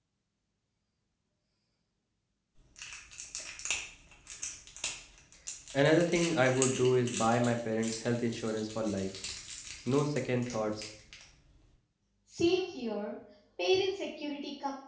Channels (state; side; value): identical; both; correlation 1.00